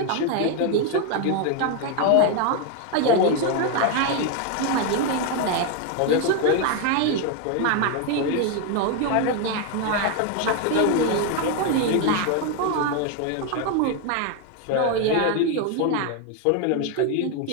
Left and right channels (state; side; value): different; both; correlation 0.01